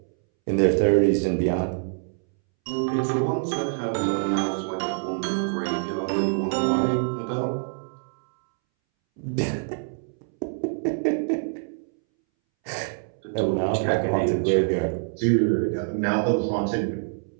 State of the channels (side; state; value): left; silent; 62 dB below the other